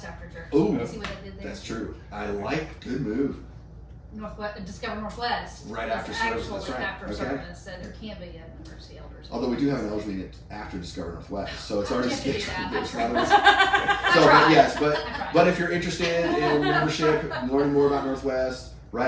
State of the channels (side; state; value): both; identical; correlation 1.00